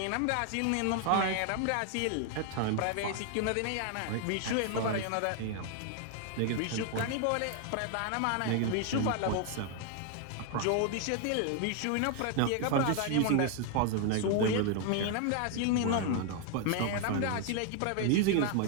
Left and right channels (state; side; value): different; both; correlation 0.00